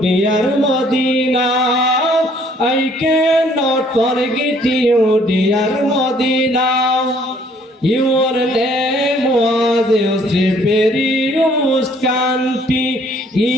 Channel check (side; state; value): both; normal; correlation 0.61